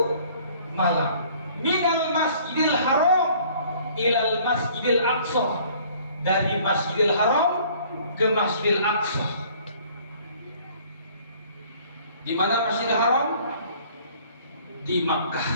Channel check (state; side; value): inverted; both; correlation -0.55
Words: malam. Minal masjidil haram ilal masjidil aqsa, dari Masjidil Haram ke Masjidil Aqsa. Di mana Masjidil Haram? Di Makkah,